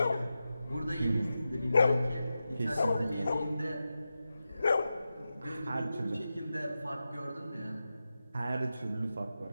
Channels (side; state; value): both; inverted; correlation -0.92